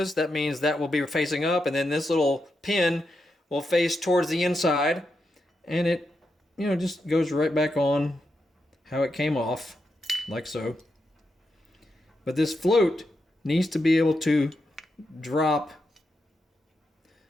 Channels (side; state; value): both; normal; correlation 0.85